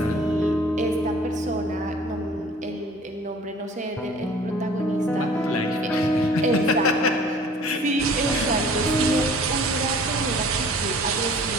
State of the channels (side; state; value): both; normal; correlation 0.49